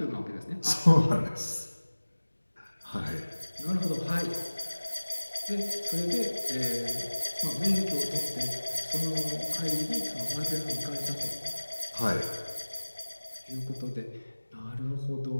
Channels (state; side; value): inverted; both; correlation -1.00